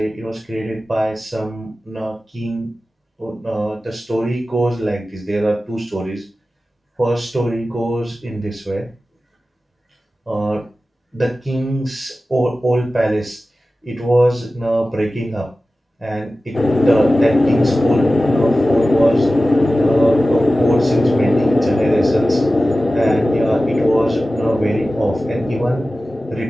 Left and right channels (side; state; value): both; normal; correlation 0.95